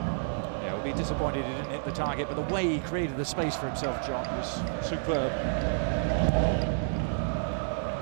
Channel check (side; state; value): left; silent; digital silence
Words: Yeah, we'll be disappointed he didn't hit the target, but the way he created the space for himself, John, was superb.